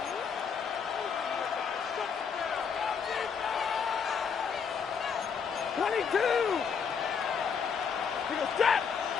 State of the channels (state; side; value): quieter; right; 6.4 dB